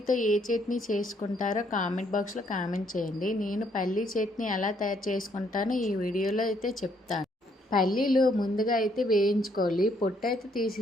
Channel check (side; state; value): both; normal; correlation 0.69